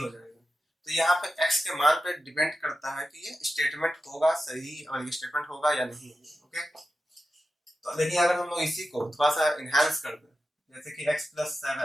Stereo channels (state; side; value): normal; both; correlation 0.92